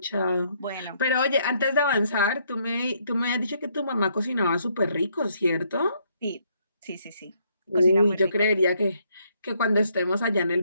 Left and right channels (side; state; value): both; inverted; correlation -0.71